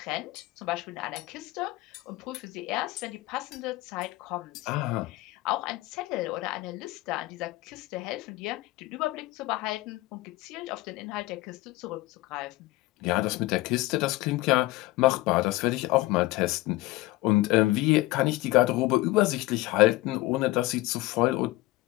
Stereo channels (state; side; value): quieter; right; 19.2 dB